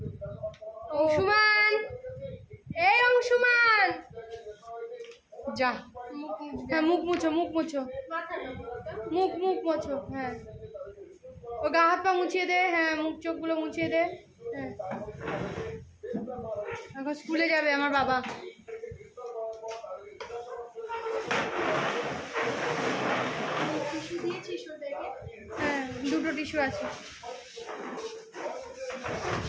অংশুমান, এই অংশুমান, যা। হ্যাঁ, মুখ মুছো, মুখ মুছো, মুখ মুছো। হ্যাঁ, ও গা হাত পা মুছিয়ে দে। হ্যাঁ, মুখ চোখগুলো মুছিয়ে দে। হ্যাঁ, এখন স্কুলে যাবে আমার বাবা। হ্যাঁ, দুটো টিস্যু আছে।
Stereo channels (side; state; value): both; identical; correlation 1.00